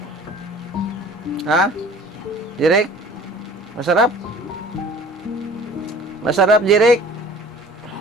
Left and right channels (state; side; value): normal; both; correlation 0.46